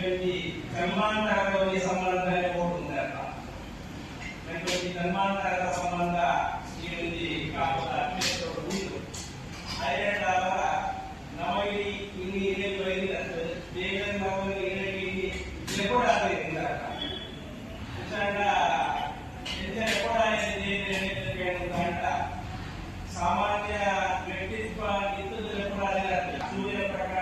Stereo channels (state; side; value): identical; both; correlation 1.00